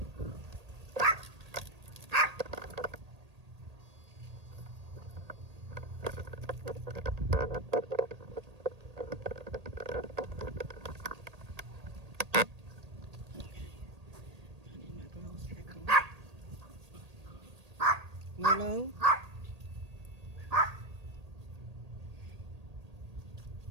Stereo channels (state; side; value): late; left; 1.8 ms